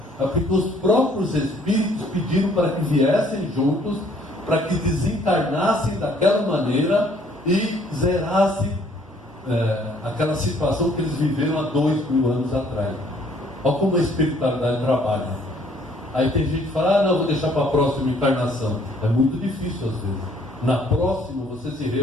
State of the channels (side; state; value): both; normal; correlation 0.61